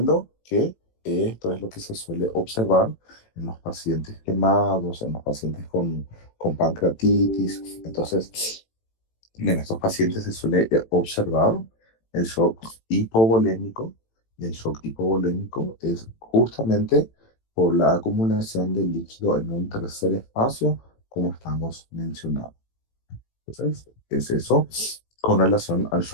que esto es lo que se suele observar en los pacientes quemados, en los pacientes con pancreatitis. Entonces, en estos pacientes se suele observar el shock hipovolémico. Y el shock hipovolémico es justamente por la acumulación de líquido en un tercer espacio, como estamos mencionando. Entonces, es eso con relación al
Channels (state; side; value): late; right; 18 ms